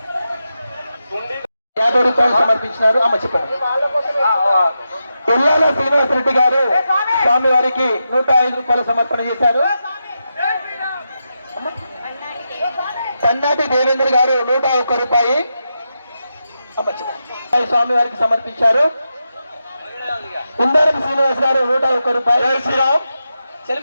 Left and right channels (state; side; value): inverted; both; correlation -0.88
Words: 50 రూపాయలు సమర్పించినారు. అమ్మ చెప్పండి. పిల్లాల శ్రీనివాసరెడ్డి గారు స్వామి వారికి 105 రూపాయలు సమర్పణ చేశారు. సన్నాటి దేవేంద్ర గారు 101 రూపాయి స్వామి వారికి సమర్పించారు. కుందారం శ్రీనివాస్ గారు 101 రూపాయలు. శ్రీరామ్